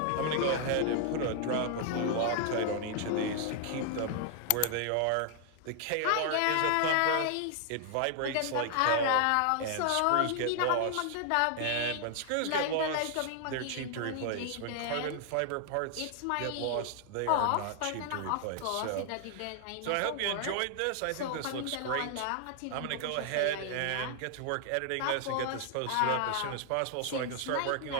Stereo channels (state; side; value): different; both; correlation 0.00